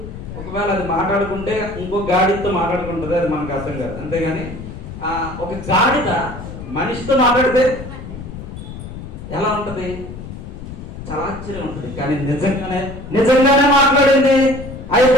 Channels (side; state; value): left; noise; rumble, 11 dB below the sound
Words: ఒకవేళ అది మాట్లాడుకుంటే ఇంకో గాడిదతో మాట్లాడుకుంటుంది, అది మనకు అర్థం కాదు. అంతేగాని ఒక గాడిద మనిషితో మాట్లాడితే ఎలా ఉంటది? చాలా ఆశ్చర్యం ఉంటుంది. కానీ నిజంగానే మాట్లాడింది ఆ